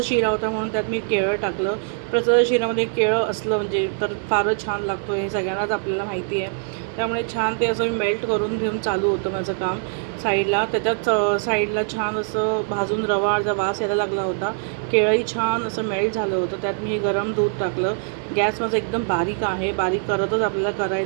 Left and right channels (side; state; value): left; silent; 59 dB below the other